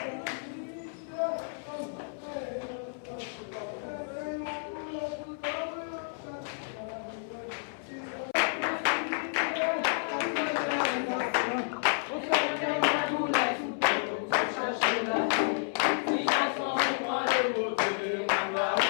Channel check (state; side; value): silent; right; 57 dB below the other